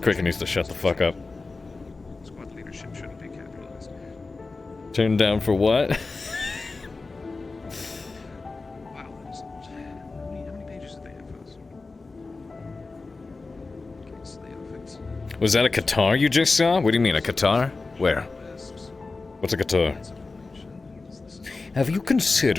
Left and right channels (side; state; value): right; quieter; 3.8 dB